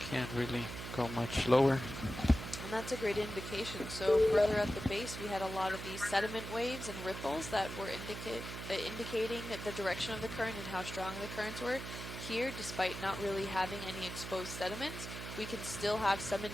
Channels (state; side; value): noise; right; hum, 8 dB below the sound